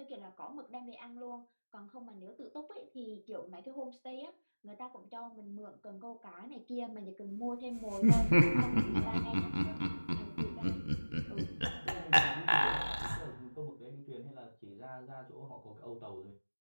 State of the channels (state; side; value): inverted; both; correlation -1.00